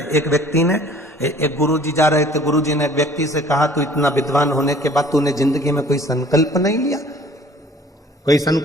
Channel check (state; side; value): normal; both; correlation 0.52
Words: एक व्यक्ति ने, एक गुरुजी जा रहे थे, गुरुजी ने एक व्यक्ति से कहा, तू इतना विद्वान होने के बाद तूने जिंदगी में कोई संकल्प नहीं लिया, कोई